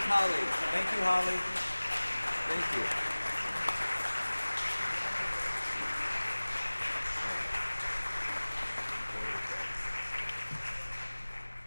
Holly? Thank you, Holly. Thank you.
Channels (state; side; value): inverted; both; correlation -1.00